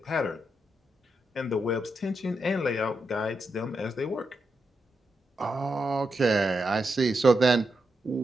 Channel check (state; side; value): normal; both; correlation 0.85